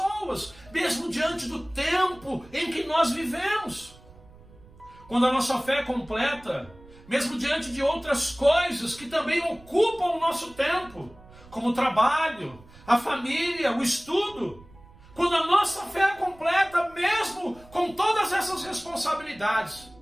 mesmo diante do tempo em que nós vivemos. Quando a nossa fé é completa, mesmo diante de outras coisas que também ocupam o nosso tempo, como o trabalho, a família, o estudo, quando a nossa fé é completa, mesmo com todas essas responsabilidades,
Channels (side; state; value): right; noise; rumble, 23 dB below the sound